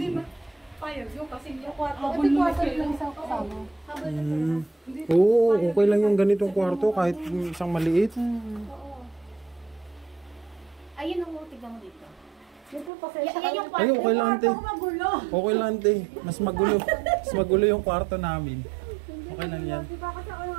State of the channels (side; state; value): left; drops out; at 12.9 s